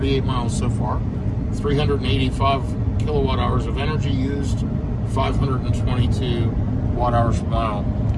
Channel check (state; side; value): identical; both; correlation 1.00